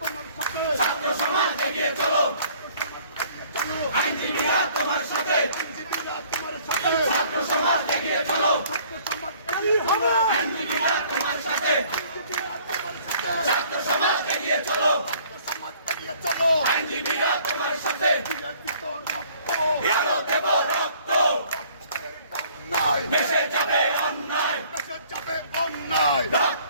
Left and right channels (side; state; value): both; inverted; correlation -0.57